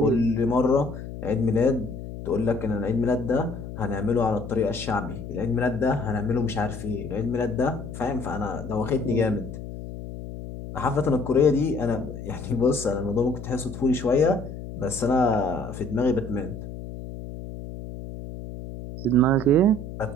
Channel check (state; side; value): noise; left; hum, 10 dB below the sound